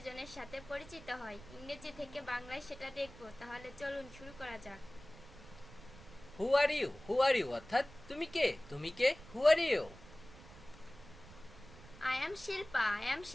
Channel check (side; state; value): right; noise; rumble, 18 dB below the sound